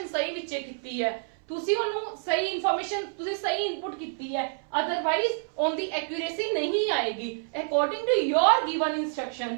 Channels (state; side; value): silent; left; 59 dB below the other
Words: सही विचे कीती है, तुसी ओनू सही इन्फॉर्मेशन, तुसी सही इनपुट कीती है, अदरवाइज ऑन दी एक्यूरेसी नहीं आएगी। According to your given